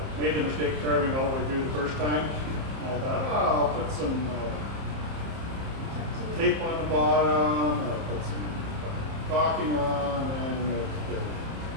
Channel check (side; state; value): left; late; 30 ms